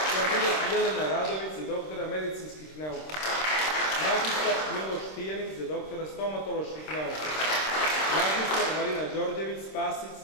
Kandidat Jelena Radović za doktora medicinskih nauka. Magistar Miloš Tijanić za doktora stomatoloških nauka. Magistar Marina Đorđević Spasić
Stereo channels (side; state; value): right; late; 26 ms